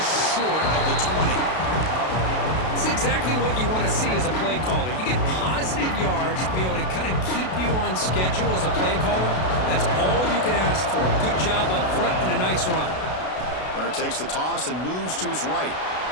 short of the 20. It's exactly what you want to see as a play caller. You get positive yards to be able to kind of keep you on schedule as a play caller. That's all you can ask for. Good job up front and a nice run. Runner takes the toss and moves to his right.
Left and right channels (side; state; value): right; late; 32 ms